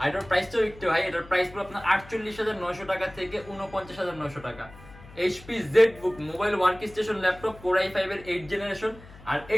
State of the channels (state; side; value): noise; left; hum, 20 dB below the sound